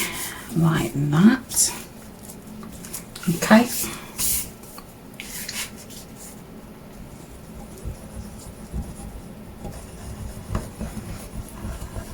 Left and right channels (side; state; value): both; identical; correlation 1.00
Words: like that. Okay.